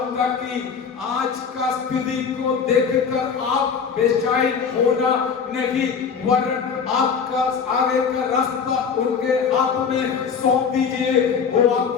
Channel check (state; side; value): quieter; right; 6.3 dB